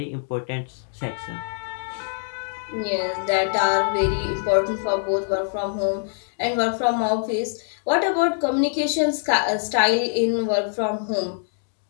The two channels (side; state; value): right; silent; digital silence